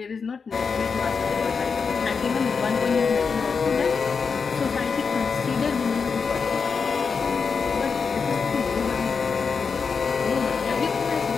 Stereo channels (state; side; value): quieter; right; 5.4 dB